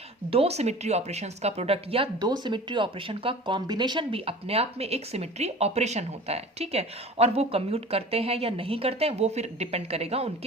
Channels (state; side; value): normal; both; correlation 0.41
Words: दो सिमेट्री ऑपरेशंस का प्रोडक्ट या दो सिमेट्री ऑपरेशन का कॉम्बिनेशन भी अपने आप में एक सिमेट्री ऑपरेशन होता है, ठीक है। और वो कम्यूट करते हैं या नहीं करते हैं वो फिर डिपेंड करेगा